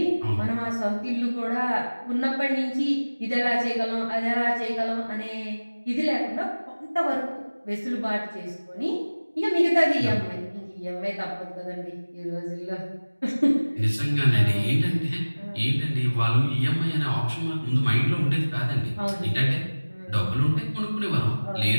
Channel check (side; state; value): both; inverted; correlation -1.00